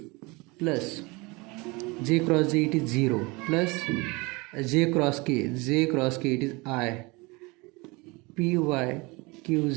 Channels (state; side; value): quieter; left; 25.6 dB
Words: plus j cross j it is 0 plus j cross k it is I py